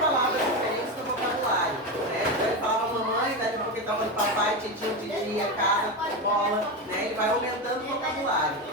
palavras diferentes no vocabulário. Né? Então ele falava mamãe, daí porque ele estava de papai, titio, titia, casa, bola. Né? Ele vai aumentando o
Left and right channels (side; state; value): both; normal; correlation 0.16